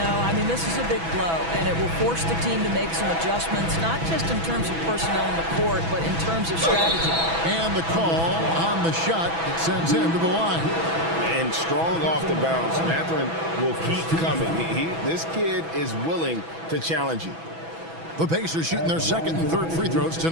No, I mean, this is a big blow, and it will force the team to make some adjustments, not just in terms of personnel in the court, but in terms of strategy. And the call on the shot that sends him to the line. And strong off the bounce. Mathurin will keep coming. This kid is willing to challenge you. The Pacers shooting their second and third free throws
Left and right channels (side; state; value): left; late; 6.1 ms